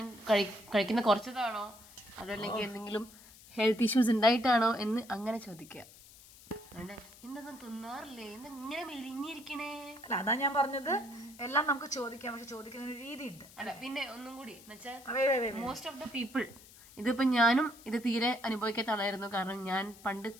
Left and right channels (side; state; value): left; noise; hiss, 21 dB below the sound